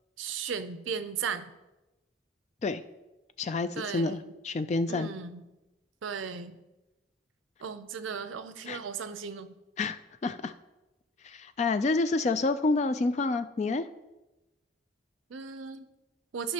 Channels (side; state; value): both; normal; correlation 0.43